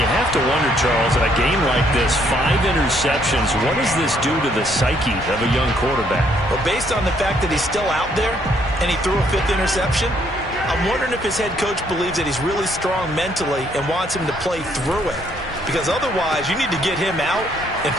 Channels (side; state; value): both; normal; correlation 0.68